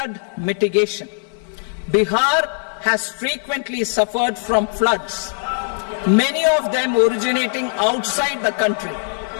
mitigation. Bihar has frequently suffered from floods, many of them originating outside the country.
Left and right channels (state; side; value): silent; right; 59 dB below the other